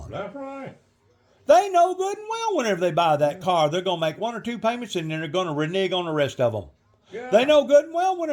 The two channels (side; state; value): both; identical; correlation 1.00